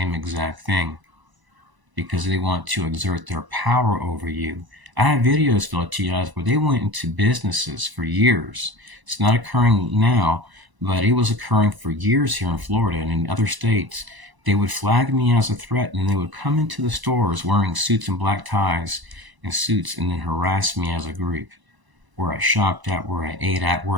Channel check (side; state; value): left; late; 1.0 ms